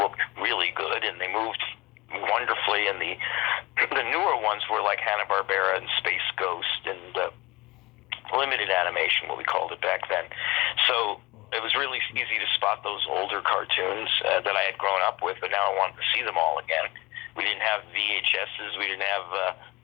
really good and they moved wonderfully, and the newer ones were like Hanna-Barbera and Space Ghost and limited animation, what we called it back then. So it was really easy to spot those older cartoons that I had grown up with, but now I wanted to see them all again. We didn't have VHSs, we didn't have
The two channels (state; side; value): quieter; right; 21.7 dB